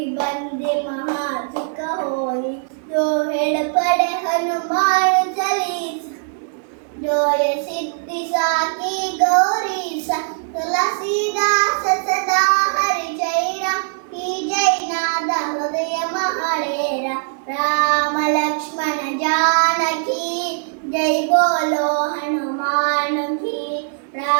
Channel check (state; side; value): silent; left; digital silence